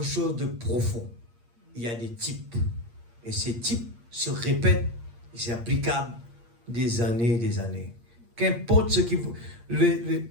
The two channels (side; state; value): left; late; 8.6 ms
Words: chose de profond. Il y a des types. Et ces types se répètent et c'est applicable des années et des années. Qu'importe ce qui vous...